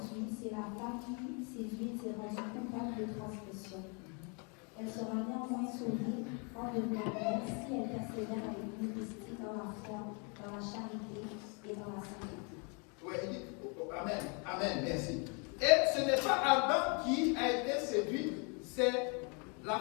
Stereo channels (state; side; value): quieter; right; 35.3 dB